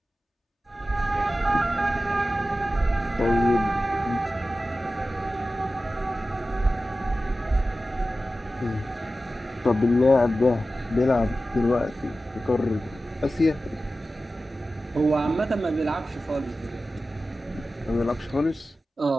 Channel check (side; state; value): both; normal; correlation 0.94